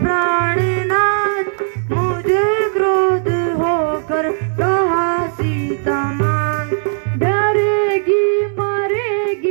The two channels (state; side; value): silent; left; 68 dB below the other